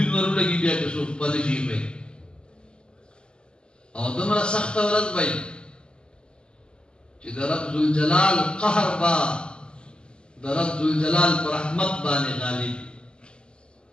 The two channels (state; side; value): late; right; 0.050 ms